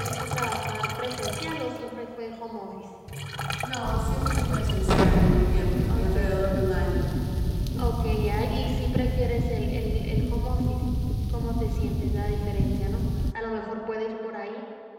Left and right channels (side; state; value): both; identical; correlation 1.00